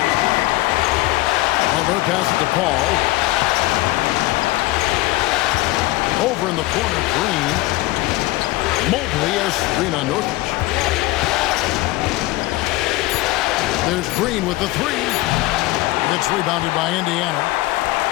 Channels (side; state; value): right; quieter; 19.0 dB